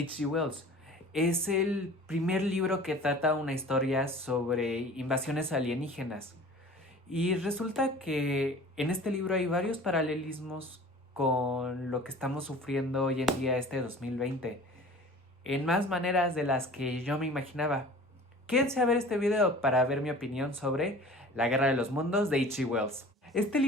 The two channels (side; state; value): both; normal; correlation 0.43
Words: G. Wells. Es el primer libro que trata una historia sobre invasiones alienígenas. Y resulta que en este libro hay varios paralelismos con lo que estamos sufriendo hoy en día este 2020, en más maneras de las que yo me imaginaba. Quédense a ver este video para ver mi opinión sobre La Guerra de los Mundos de H. G. Wells. Este